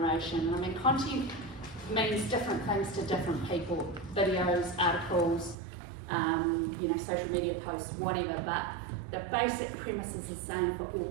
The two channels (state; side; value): drops out; left; at 5.6 s